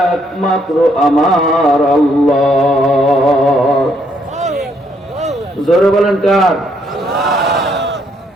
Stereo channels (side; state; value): both; normal; correlation 0.71